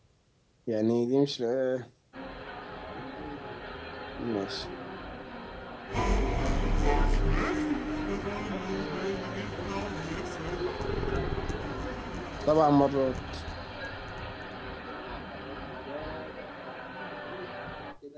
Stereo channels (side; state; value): both; identical; correlation 1.00